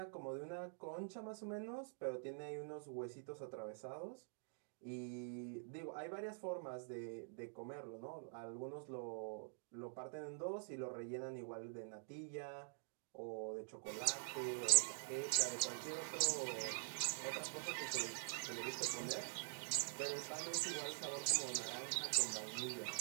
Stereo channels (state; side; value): silent; left; digital silence